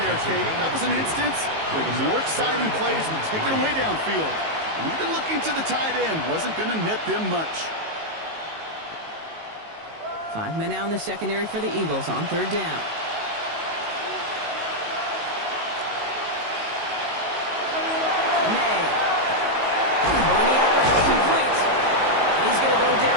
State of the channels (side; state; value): left; late; 19 ms